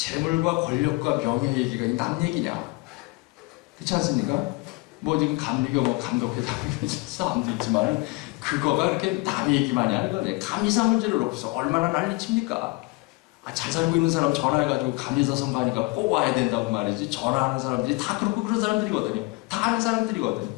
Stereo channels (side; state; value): right; quieter; 25.0 dB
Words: 권력과 명예 얘기가 남 얘기냐? 그렇지 않습니까? 뭐 지금 감리교 뭐 감독회장 사람도 있지만 그거가 그렇게 남 얘기만이 하는 거네. 감리사 문제를 놓고서 얼마나 난리칩니까? 잘 살고 있는 사람 전화해가지고 감리사 선거하니까 꼭 와야 된다고 말이지. 전화하는 사람들이 다 그렇고 그런 사람들이거든요. 다 아는 사람들이거든요.